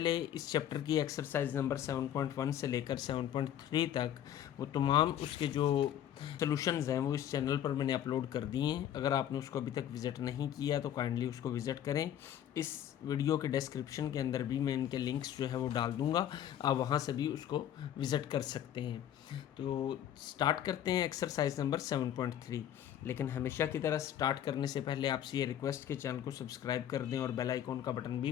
इस चैप्टर की एक्सरसाइज नंबर 7.1 से लेकर 7.3 तक वो तमाम उसके जो सॉल्यूशंस हैं वो इस चैनल पर मैंने अपलोड कर दिए हैं। अगर आपने उसको अभी तक विज़िट नहीं किया तो काइंडली उसको विज़िट करें। इस वीडियो के डिस्क्रिप्शन के अंदर भी मैं इनके लिंक्स जो है वो डाल दूंगा, आप वहाँ से भी उसको विज़िट कर सकते हैं। तो स्टार्ट करते हैं एक्सरसाइज नंबर 7.3। लेकिन हमेशा की तरह स्टार्ट करने से पहले आपसे ये रिक्वेस्ट कि चैनल को सब्सक्राइब कर दें और बेल आइकॉन का बटन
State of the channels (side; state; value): right; quieter; 10.7 dB